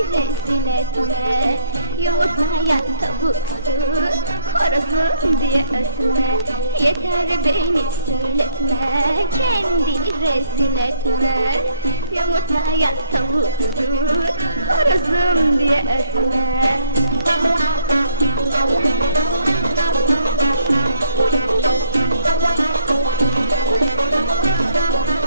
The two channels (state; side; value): inverted; both; correlation -0.65